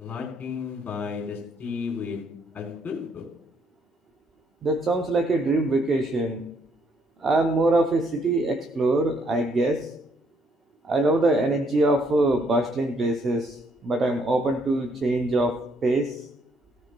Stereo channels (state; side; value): normal; both; correlation 0.70